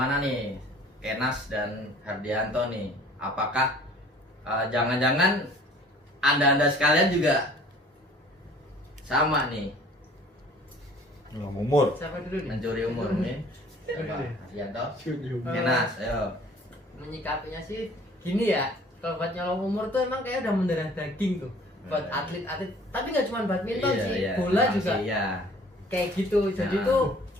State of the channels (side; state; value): both; normal; correlation 0.52